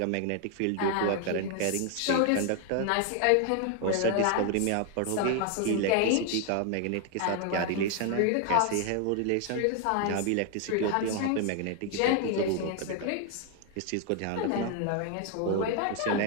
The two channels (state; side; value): different; both; correlation 0.00